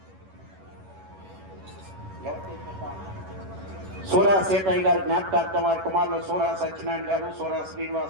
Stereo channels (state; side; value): late; left; 11 ms